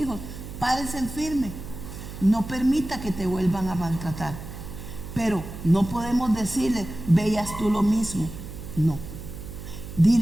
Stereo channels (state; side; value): noise; right; hum, 11 dB below the sound